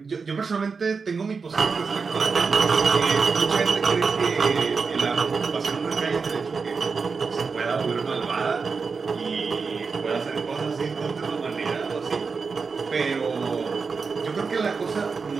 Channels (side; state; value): left; quieter; 5.0 dB